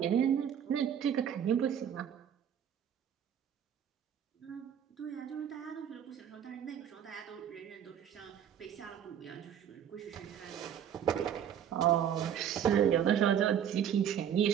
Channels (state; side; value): quieter; left; 9.1 dB